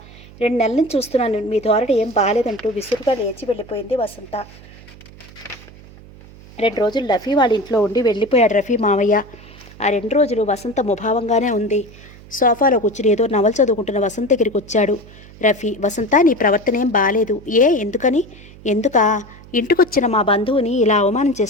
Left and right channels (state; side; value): noise; right; hum, 20 dB below the sound